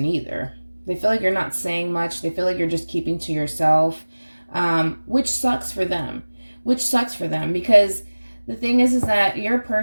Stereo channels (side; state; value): both; inverted; correlation -1.00